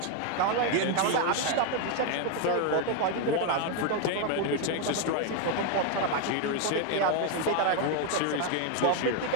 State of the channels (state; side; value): different; both; correlation 0.01